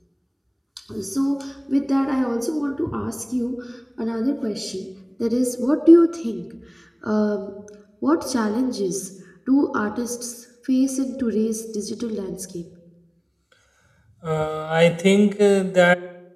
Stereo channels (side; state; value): both; identical; correlation 1.00